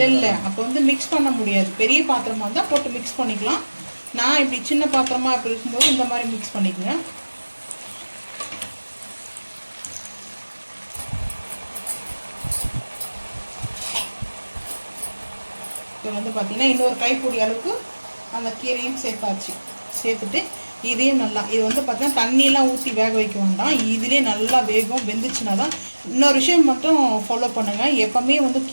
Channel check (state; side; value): inverted; both; correlation -1.00